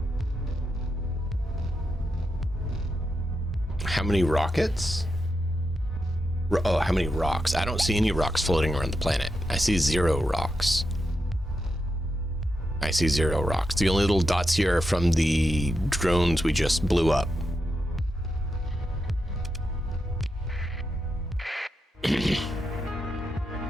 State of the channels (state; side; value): normal; both; correlation 0.86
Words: How many rockets? Oh, how many rocks? I don't see any rocks floating around the planet. I see 0 rocks. I see 0 rocks. The only little dots here are from the drones we just blew up.